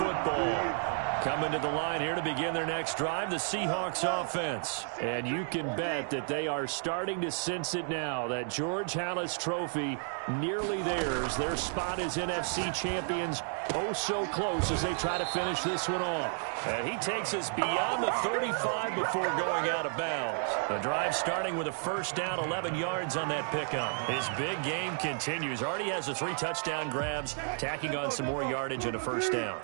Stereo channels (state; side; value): silent; left; 56 dB below the other